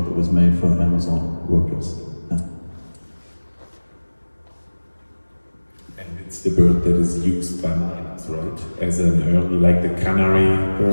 was made for Amazon workers. Yeah. And it's the bird that is used by miners. right? As an early, like the canary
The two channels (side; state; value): both; inverted; correlation -1.00